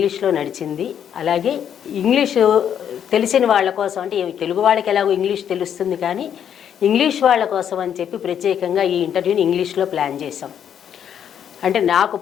నడిచింది. అలాగే ఇంగ్లీషు తెలిసిన వాళ్ళ కోసం, అంటే తెలుగు వాళ్ళకి ఎలాగో ఇంగ్లీష్ తెలుస్తుంది, కానీ ఇంగ్లీష్ వాళ్ళ కోసం అని చెప్పి ప్రత్యేకంగా ఈ ఇంటర్వ్యూని ఇంగ్లీష్లో ప్లాన్ చేశాం. అంటే నాకు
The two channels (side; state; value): right; quieter; 9.0 dB